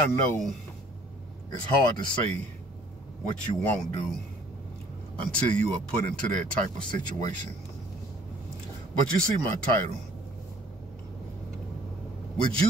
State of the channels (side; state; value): both; normal; correlation 0.57